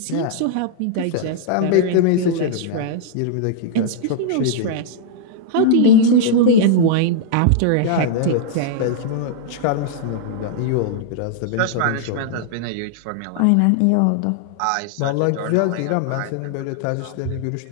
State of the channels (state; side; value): different; both; correlation -0.01